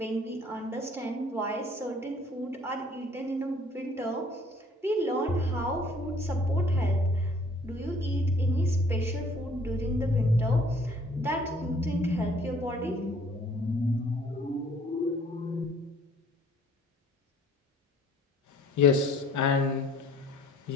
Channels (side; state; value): both; normal; correlation 0.57